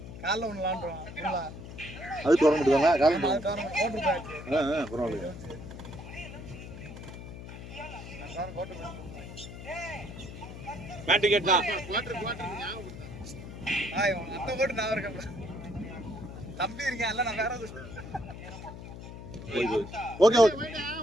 காலைல ஒன்று விளாண்டுறோம். அது டோர்னமெண்ட் தானே? காலையில் போட்டுருக்காங்க. பரவாயில்லையா? பேட் டிக்கெட் தான். அத்தை போட்டு நான் இருக்கேன். தம்பி இருக்கேன் இல்ல, நான் வேற ஓகே ஓகே.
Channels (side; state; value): left; noise; hum, 12 dB below the sound